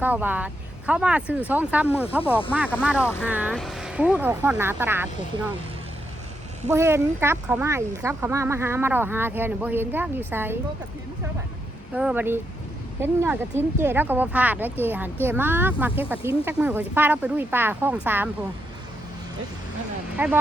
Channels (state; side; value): normal; both; correlation 0.81